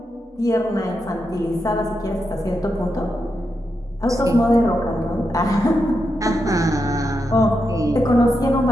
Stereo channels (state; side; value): normal; both; correlation 0.85